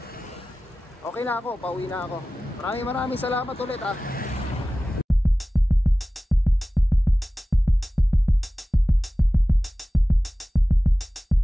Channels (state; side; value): normal; both; correlation 0.96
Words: Okay na ako, pauwi na ako. Maraming salamat ulit ah.